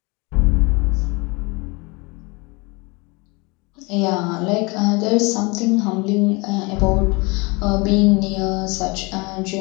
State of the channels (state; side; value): quieter; right; 27.3 dB